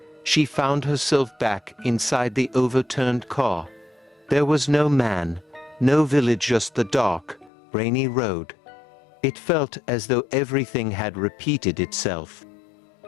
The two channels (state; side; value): drops out; right; at 7.5 s